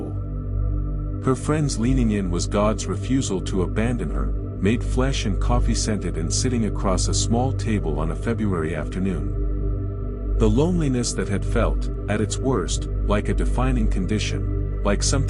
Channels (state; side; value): identical; both; correlation 1.00